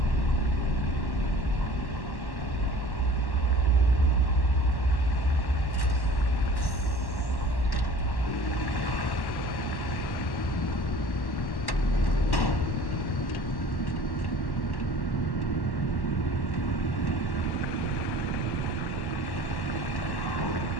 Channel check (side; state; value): right; late; 1.1 ms